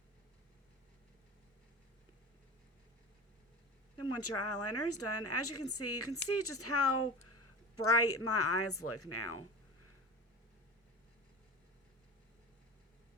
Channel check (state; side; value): normal; both; correlation 0.31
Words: Then once your eyeliner is done, as you can see just how bright my eyes look now.